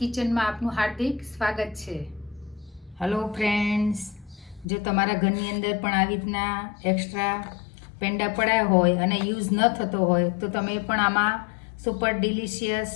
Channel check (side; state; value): right; drops out; at 4.7 s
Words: આપનું હાર્દિક સ્વાગત છે. હેલો ફ્રેન્ડ્સ, જો તમારા ઘરની અંદર પણ આવી રીતના એક્સ્ટ્રા પેંડા પડ્યા હોય અને યુઝ ન થતો હોય તો તમે પણ આમાં સુપર ડિલિશિયસ